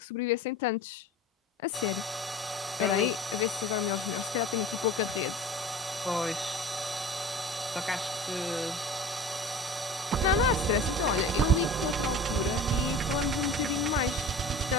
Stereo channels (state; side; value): normal; both; correlation 0.38